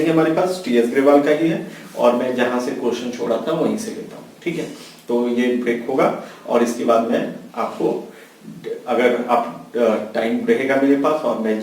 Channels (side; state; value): both; identical; correlation 1.00